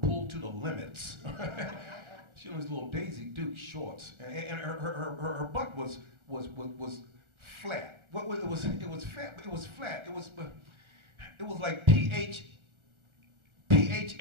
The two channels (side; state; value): left; late; 1.4 ms